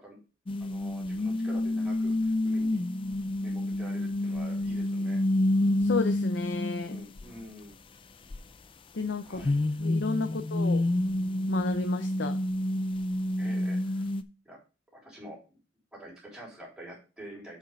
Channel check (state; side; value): normal; both; correlation 0.82